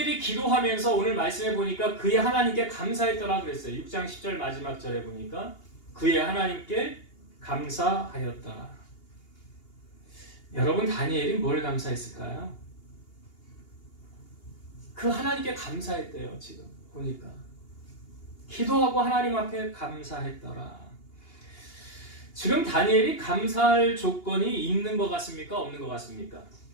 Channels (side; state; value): right; late; 2.8 ms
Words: 기도하면서 오늘 말씀해 보니까 그의 하나님께 감사했더라 그랬어요. 6장 10절 마지막 절에 보니까 그의 하나님께 감사하였더라. 여러분, 다니엘이 뭘 감사했을까요? 그 하나님께 감사했대요. 지금 보니까 기도하고 하나님 앞에 감사했더라. 지금 다니엘이 감사할 조건이 있는 것 같습니까? 없는 것 같습니까?